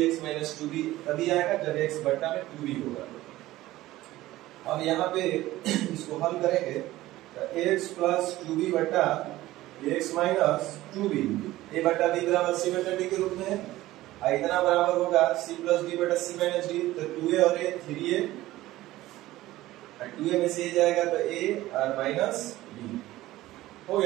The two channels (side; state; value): left; quieter; 16.5 dB